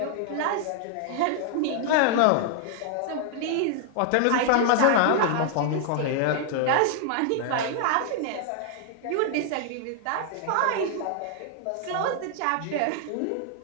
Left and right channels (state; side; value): different; both; correlation 0.00